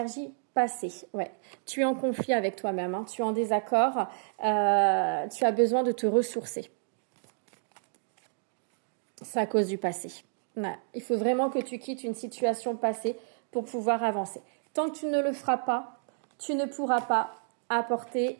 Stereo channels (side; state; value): left; silent; digital silence